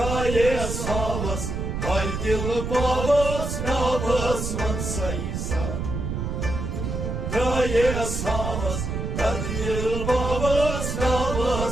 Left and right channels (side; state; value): right; noise; rumble, 3 dB below the sound